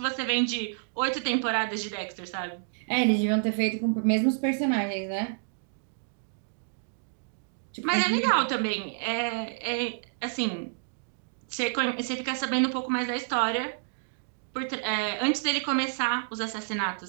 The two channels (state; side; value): silent; left; digital silence